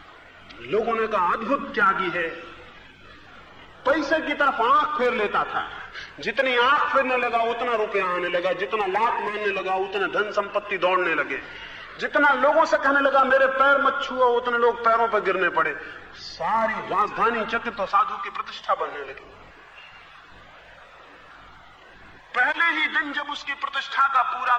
लोगों ने कहा अद्भुत त्यागी है, पैसे की तरफ आंख फेर लेता था। जितनी आंख फेरने लगा उतना रुपया आने लगा, जितना लात मारने लगा उतने धन संपत्ति दौड़ने लगे, जितना लोगों से कहने लगा मेरे पैर मत छुओ उतने लोग पैरों पर गिरने पड़े। सारी राजधानी चकित तो साधु की प्रतिष्ठा बनने लगी। पहले ही दिन जब उसकी प्रतिष्ठा का पूरा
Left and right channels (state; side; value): identical; both; correlation 1.00